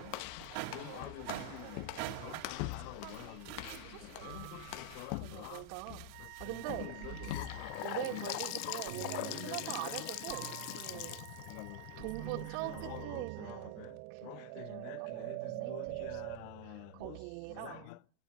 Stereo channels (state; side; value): different; both; correlation -0.01